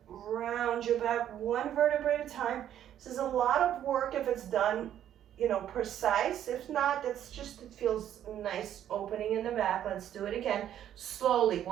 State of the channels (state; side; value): quieter; left; 10.8 dB